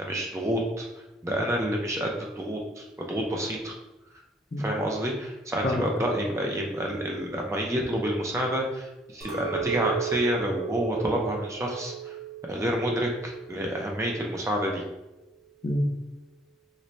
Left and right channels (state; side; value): normal; both; correlation 0.57